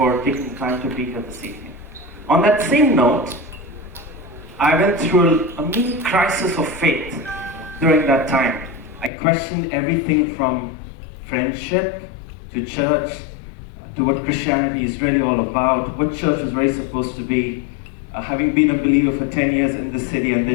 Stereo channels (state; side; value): drops out; right; at 9.1 s